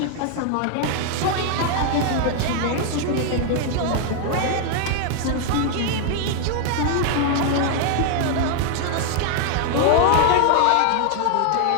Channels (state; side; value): different; both; correlation 0.00